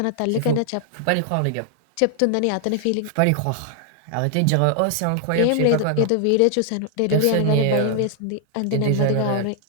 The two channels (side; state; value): both; different; correlation 0.00